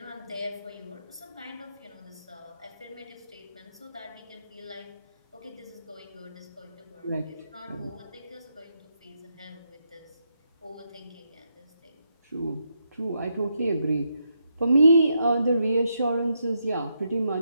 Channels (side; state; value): both; inverted; correlation -0.81